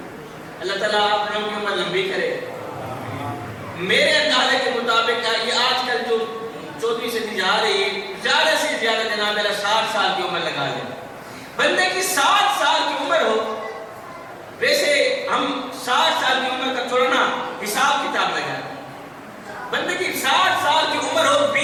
اللہ تعالیٰ آپ لوگوں کی عمر لمبی کرے میرے اندازے کے مطابق یہ آج کل جو 24 سے جا رہی ہے زیادہ سے زیادہ جناب میرا 60 سال کی عمر لگا لیں بندے کی 60 سال کی عمر ہو ویسے ہم 60 سال کی عمر کا تھوڑا نا حساب کتاب لگا بندے کی 60 سال کی عمر ہو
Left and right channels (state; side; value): identical; both; correlation 1.00